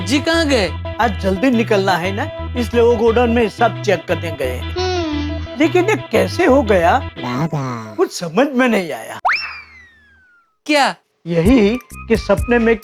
जी कहाँ गए? आज जल्दी निकलना है ना, इसलिए वो गोडाउन में हिसाब चेक करने गए। लेकिन ये कैसे हो गया कुछ समझ में नहीं आया। क्या? यही कि सपने में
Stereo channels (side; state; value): both; identical; correlation 1.00